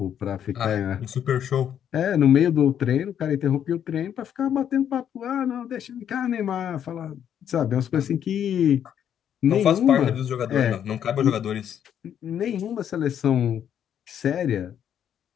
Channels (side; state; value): right; quieter; 9.3 dB